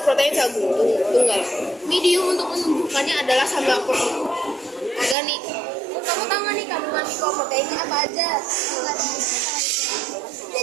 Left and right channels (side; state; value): left; drops out; at 5.2 s